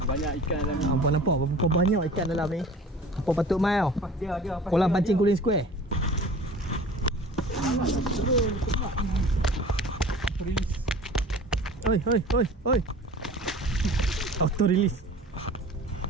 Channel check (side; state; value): both; normal; correlation 0.43